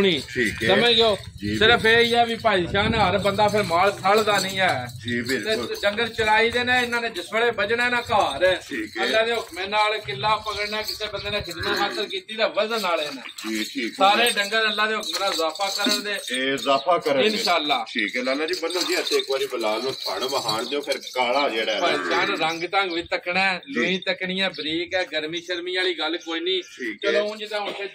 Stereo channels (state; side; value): identical; both; correlation 1.00